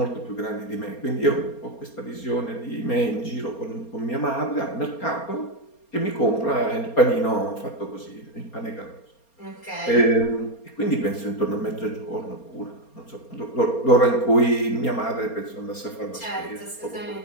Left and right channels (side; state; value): right; late; 4.3 ms